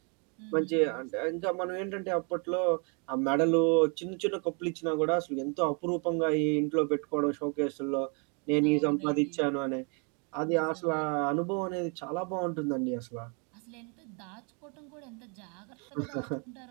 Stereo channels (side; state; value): left; quieter; 36.3 dB